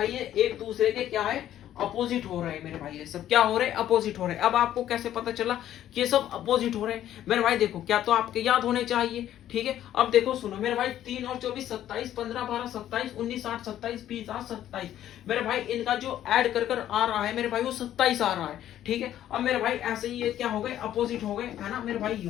ये एक दूसरे के क्या है अपोजिट हो रहे हैं मेरे भाई, ये सब क्या हो रहे हैं अपोजिट हो रहे हैं। अब आपको कैसे पता चला कि ये सब अपोजिट हो रहे हैं मेरे भाई, देखो क्या तो आपके याद होने चाहिए। ठीक है, अब देखो सुनो मेरे भाई 3 और 24 27, 15 12 27, 19 8 27, 20 8 27। मेरे भाई इनका जो ऐड कर आ रहा है मेरे भाई वो 27 आ रहा है। ठीक है, अब मेरे भाई ऐसे ही ये क्या हो गए अपोजिट हो गए है ना मेरे भाई, ये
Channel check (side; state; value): right; quieter; 11.9 dB